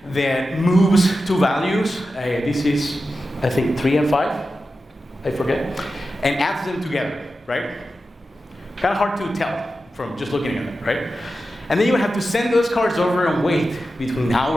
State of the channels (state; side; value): normal; both; correlation 0.92